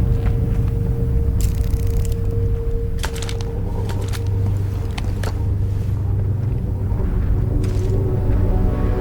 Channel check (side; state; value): both; identical; correlation 1.00